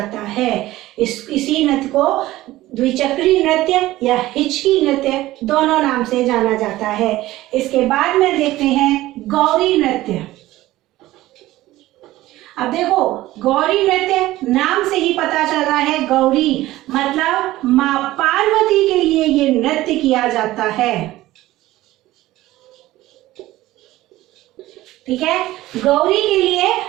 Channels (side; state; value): left; quieter; 16.5 dB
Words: है। इसी नृत्य को द्विचक्री नृत्य या हिचकी नृत्य दोनों नाम से जाना जाता है। इसके बाद में देखते हैं गौरी नृत्य। अब देखो, गौरी नृत्य नाम से ही पता चल रहा है, गौरी मतलब मां पार्वती के लिए ये नृत्य किया जाता है। ठीक है, गौरी के लिए